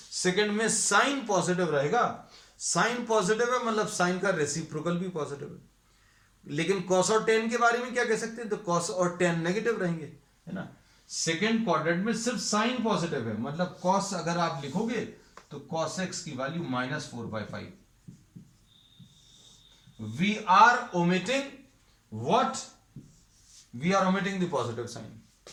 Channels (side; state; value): both; identical; correlation 1.00